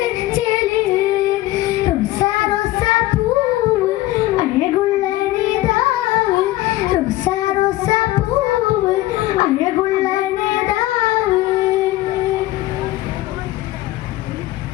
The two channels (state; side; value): quieter; right; 16.9 dB